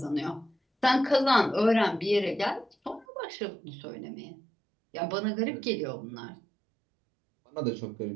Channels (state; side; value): drops out; left; at 3.1 s